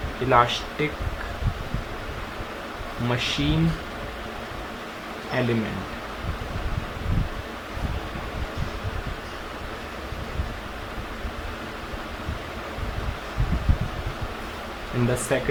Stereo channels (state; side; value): identical; both; correlation 1.00